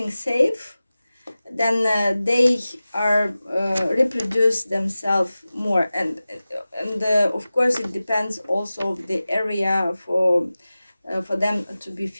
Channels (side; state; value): both; inverted; correlation -0.96